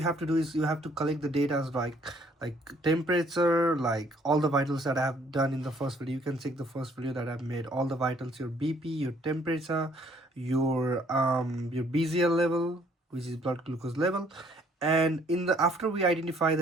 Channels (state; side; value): normal; both; correlation 0.62